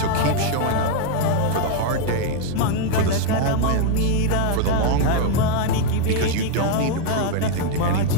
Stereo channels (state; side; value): different; both; correlation 0.01